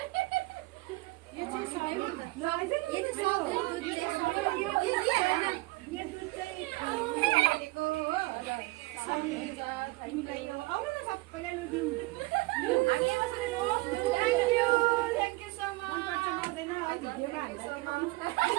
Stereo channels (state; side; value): quieter; left; 22.4 dB